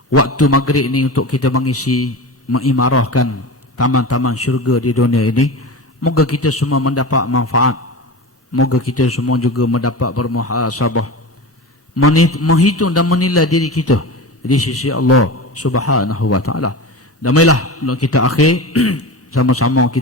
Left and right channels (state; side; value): normal; both; correlation 0.28